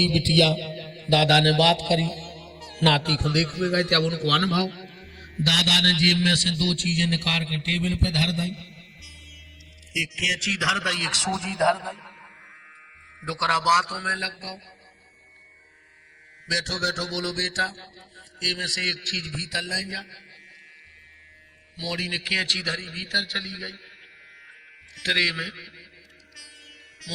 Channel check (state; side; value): identical; both; correlation 1.00